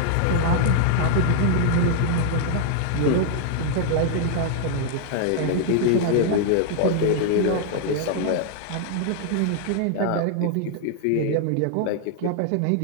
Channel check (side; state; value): both; different; correlation 0.00